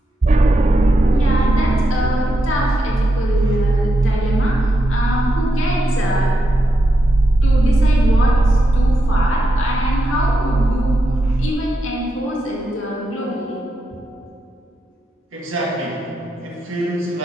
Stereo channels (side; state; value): both; normal; correlation 0.85